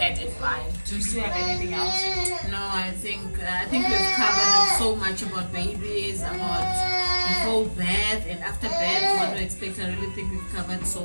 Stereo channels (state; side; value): inverted; both; correlation -1.00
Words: in mind. Do you still have anything else? No, I think we've covered so much about babies, about before birth and after birth, what to expect. I really think we've covered so